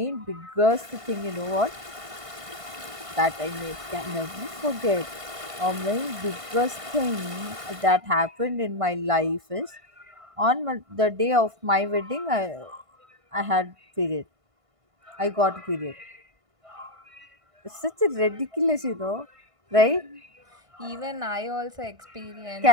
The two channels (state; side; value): late; left; 1.5 ms